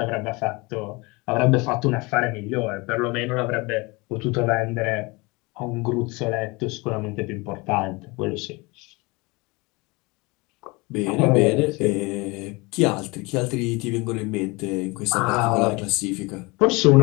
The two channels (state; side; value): quieter; right; 25.5 dB